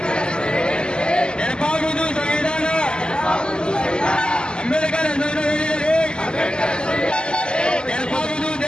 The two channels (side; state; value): right; late; 0.048 ms